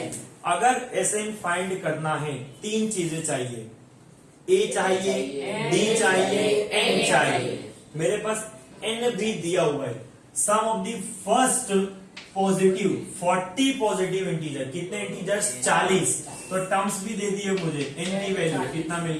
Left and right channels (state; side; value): identical; both; correlation 1.00